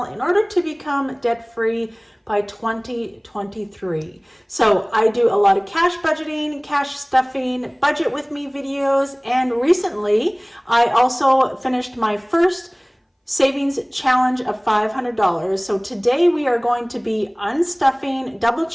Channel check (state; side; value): identical; both; correlation 1.00